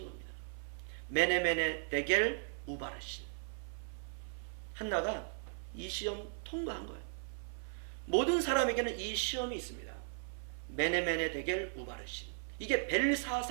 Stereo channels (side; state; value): left; silent; 53 dB below the other